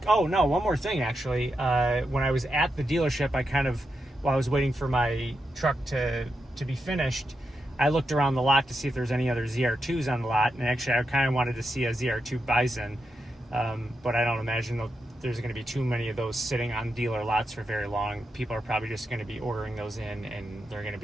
Oh no, one more thing actually. When I was at the dealership, while I was waiting for my truck to be finished, I looked around the lot to see if there's any other ZR2s on the lot, and actually I kind of wanted to see a ZR2 Bison, but I don't imagine there's going to be too many of those sitting on dealer lots for very long. People are probably just going to be ordering those in, and they're going to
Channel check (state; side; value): normal; both; correlation 0.86